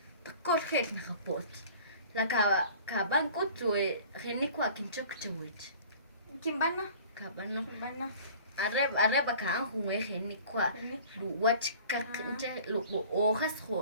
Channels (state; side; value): inverted; both; correlation -0.46